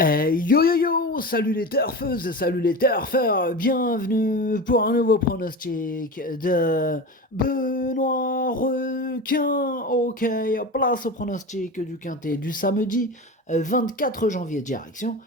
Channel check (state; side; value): normal; both; correlation 0.27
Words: yo yo, salut les turfeuses, salut les turfeurs, bienvenue pour un nouveau pronostic de Benoît Requin. Ok, place au pronostic du quintet du samedi 24 janvier, direction